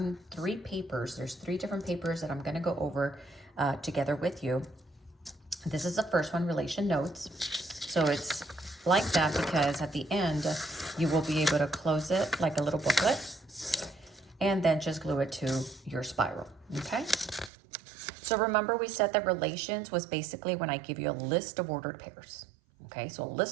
3 papers. There's 3 different papers that I'm going to go over together with you. This is the first one, relation notes. So it's like that because at the end, you will be able to close it like a little booklet and then just glue it to your spiral, okay? So remember we said that relations was basically when I give you a list of ordered pairs, okay? So a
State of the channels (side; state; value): left; drops out; at 17.5 s